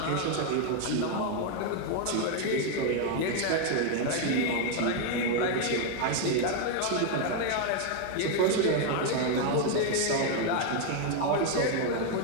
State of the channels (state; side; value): different; both; correlation 0.01